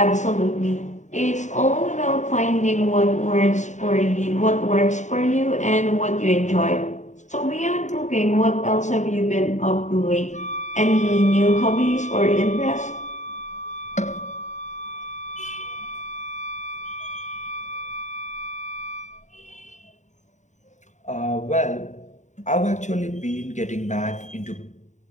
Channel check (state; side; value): late; right; 0.34 ms